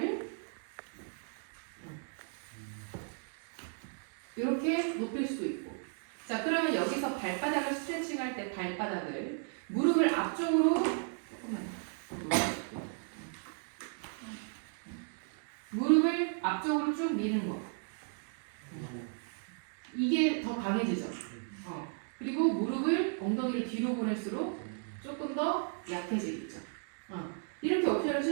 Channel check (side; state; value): left; silent; 54 dB below the other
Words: 이렇게 높일 수도 있고. 자, 그러면 여기서 발바닥을 스트레칭할 때 발바닥을 무릎을 앞쪽으로 조금만 무릎을 앞쪽으로 쭉 미는 거. 이게 더 강해지죠. 그리고 무릎을 엉덩이를 뒤로 보낼수록 조금 더 약해지겠죠. 이렇게 옵션을